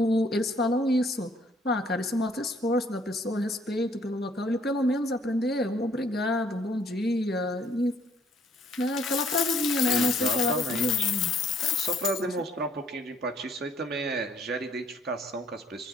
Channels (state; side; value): normal; both; correlation 0.62